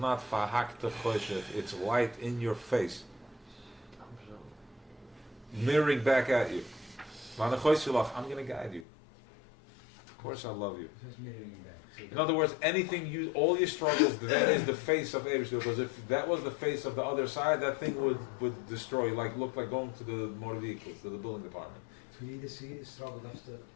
fahakta choshev. It's light in your face, mirroring back at you. I'm going to guide you. course I love you. Just mirroring back. So In other words, all your struggles, that is the face of Eibishter. Because if that was the face of the other side, that thing would destroy you. Like, look like going to the motor vehicles, to the building department. so you either see struggle has to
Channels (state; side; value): drops out; right; at 8.8 s